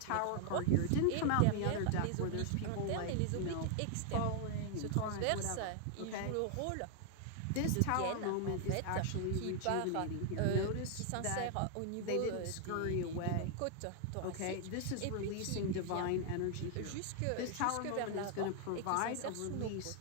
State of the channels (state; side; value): different; both; correlation 0.00